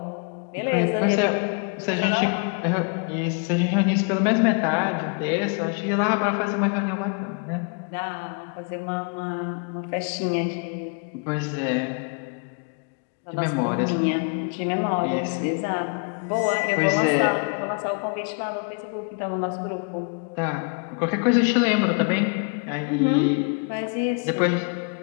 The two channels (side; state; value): right; quieter; 36.6 dB